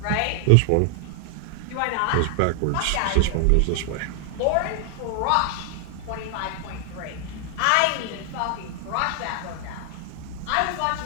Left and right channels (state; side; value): different; both; correlation 0.00